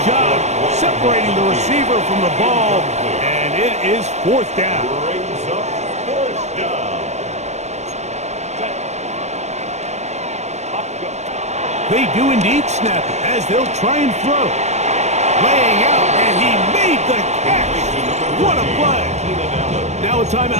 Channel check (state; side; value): late; left; 0.32 ms